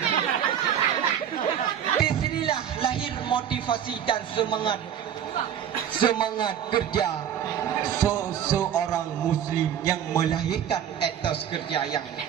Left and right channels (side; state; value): left; quieter; 9.4 dB